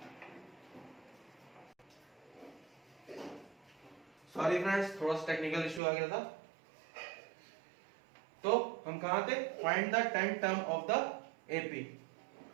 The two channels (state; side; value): drops out; left; at 5.8 s